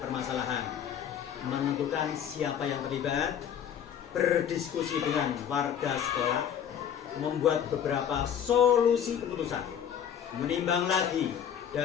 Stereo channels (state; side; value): quieter; right; 8.9 dB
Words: permasalahan, menentukan siapa yang terlibat, berdiskusi dengan warga sekolah, membuat beberapa solusi keputusan, menimbang lagi